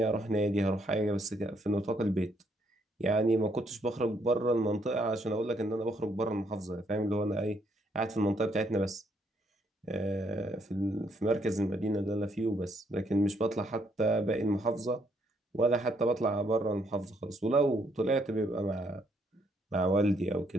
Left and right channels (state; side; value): normal; both; correlation 0.71